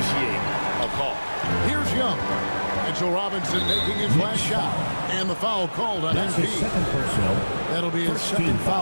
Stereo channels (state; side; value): inverted; both; correlation -1.00